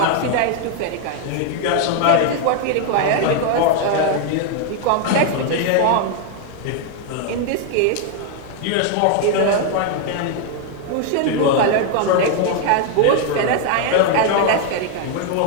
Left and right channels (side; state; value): both; different; correlation 0.01